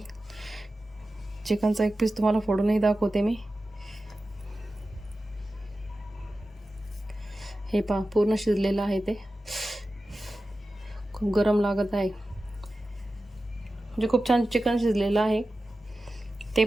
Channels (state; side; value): normal; both; correlation 0.94